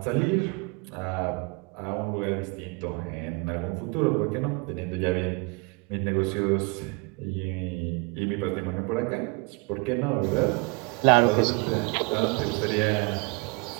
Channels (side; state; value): left; quieter; 29.8 dB